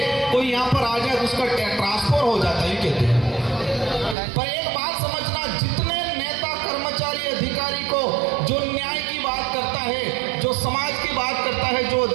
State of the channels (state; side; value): drops out; left; at 4.2 s